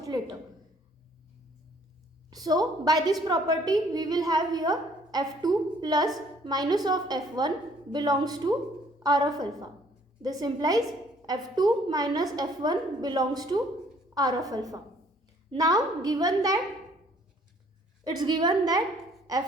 later. So by this property, we will have here f2 plus minus of f1 belongs to R of alpha. This implies f2 minus f1 belongs to R of alpha. Now given that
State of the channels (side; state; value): both; normal; correlation 0.61